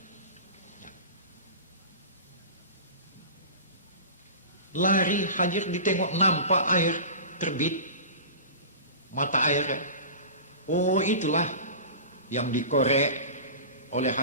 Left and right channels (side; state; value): both; inverted; correlation -0.34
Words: Lari Hajar ditengok, nampak air terbit, mata air. Oh, itulah yang dikorek oleh